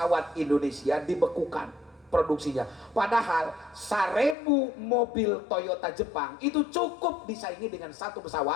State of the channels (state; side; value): drops out; right; at 4.4 s